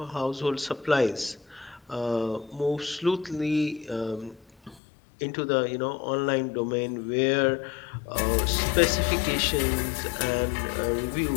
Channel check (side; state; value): right; drops out; at 4.8 s